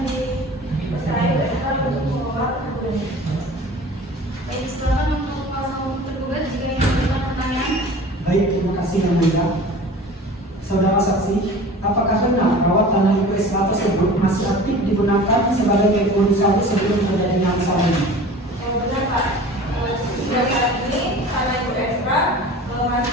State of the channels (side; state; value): both; normal; correlation 0.41